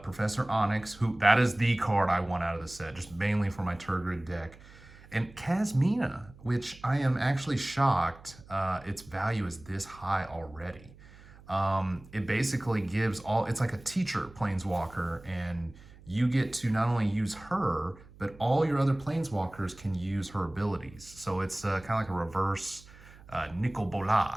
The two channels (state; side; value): noise; right; hum, 21 dB below the sound